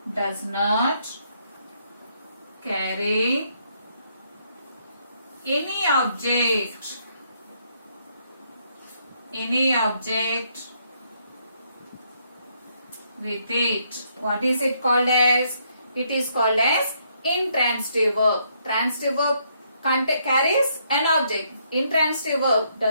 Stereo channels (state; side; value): inverted; both; correlation -0.72